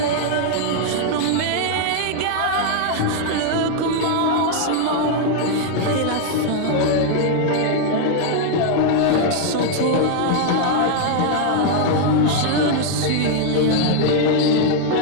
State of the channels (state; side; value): different; both; correlation 0.00